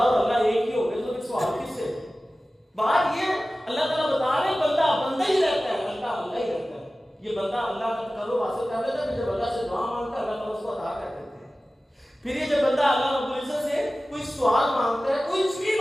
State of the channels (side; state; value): both; normal; correlation 0.96